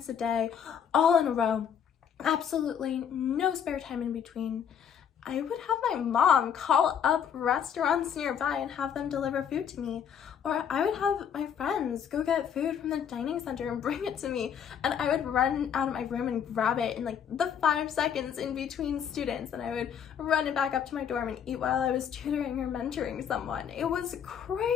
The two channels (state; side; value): quieter; right; 8.2 dB